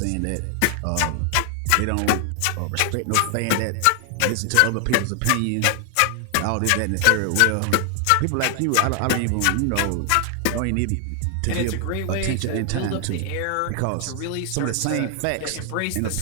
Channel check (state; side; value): different; both; correlation 0.00